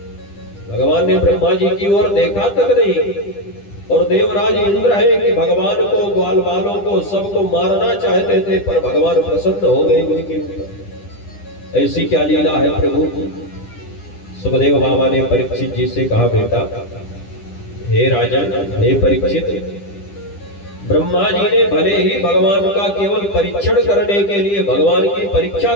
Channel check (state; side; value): late; right; 10 ms